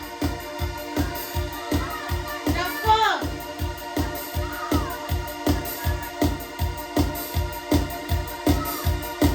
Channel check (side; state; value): both; identical; correlation 1.00